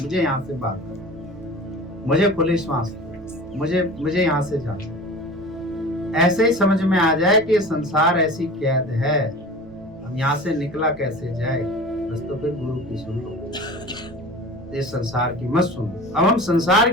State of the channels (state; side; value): noise; right; rumble, 24 dB below the sound